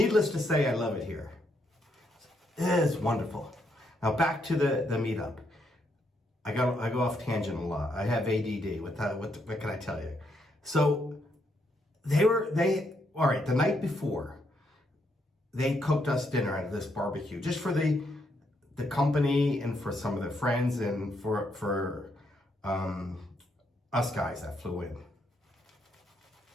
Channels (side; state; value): both; normal; correlation 0.76